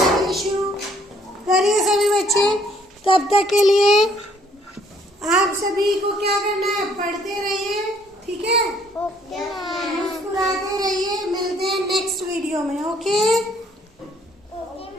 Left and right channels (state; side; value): normal; both; correlation 0.64